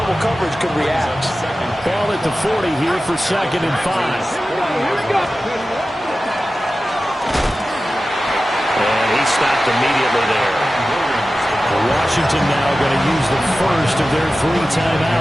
coverage could react. Ball at the 40 here for 2nd and 5. And he stopped immediately there. Washington now going to use the first of their 3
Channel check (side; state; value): both; normal; correlation 0.94